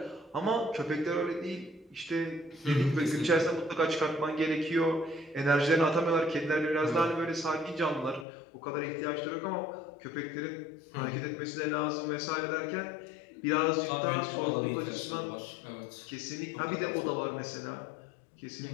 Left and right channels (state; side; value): drops out; right; at 8.2 s